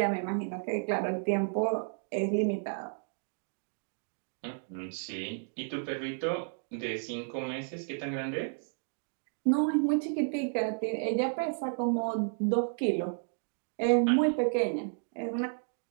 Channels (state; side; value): silent; left; 56 dB below the other